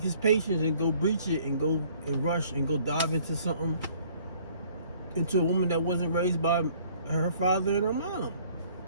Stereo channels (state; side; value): inverted; both; correlation -0.58